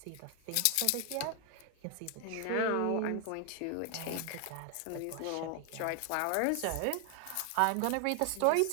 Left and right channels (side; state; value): both; different; correlation 0.00